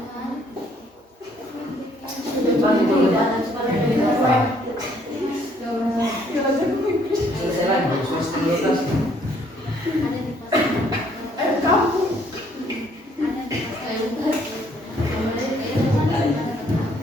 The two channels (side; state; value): both; normal; correlation 0.65